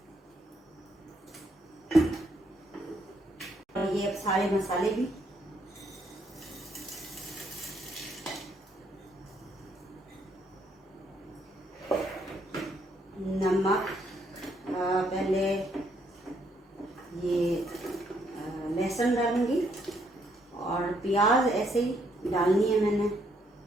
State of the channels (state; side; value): normal; both; correlation 0.72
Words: और ये अब सारे मसाले भी, नमक, पहले ये लहसुन डालूंगी, और प्याज ऐसे ही डालनी है मैंने।